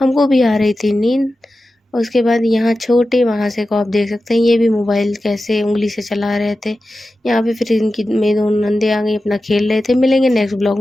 भी आ रही थी नींद। और उसके बाद यहाँ छोटे वहाँ से को आप देख सकते हैं, ये भी मोबाइल कैसे उंगली से चला रहे थे। यहाँ पे फिर इनकी मेरी दोनों नंदे आ गई, अपना खेल रहे थे। मिलेंगे नेक्स्ट ब्लॉग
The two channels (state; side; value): normal; both; correlation 0.93